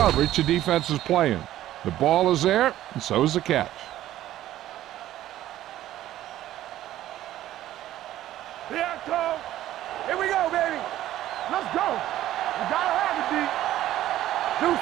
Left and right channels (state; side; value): quieter; left; 13.6 dB